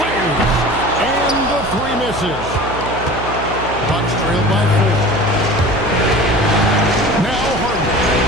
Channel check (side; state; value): right; noise; hum, 9 dB below the sound